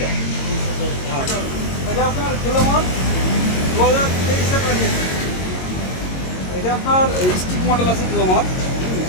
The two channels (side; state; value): right; late; 22 ms